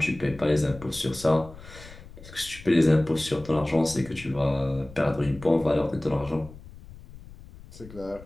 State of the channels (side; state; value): left; noise; rumble, 18 dB below the sound